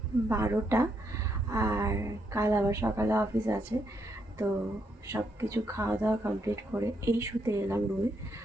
12টা। আর কাল আবার সকালে অফিস আছে, তো সব কিছু খাওয়া দাওয়া কমপ্লিট করে এই শুতে এলাম রুমে।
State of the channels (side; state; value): both; normal; correlation 0.77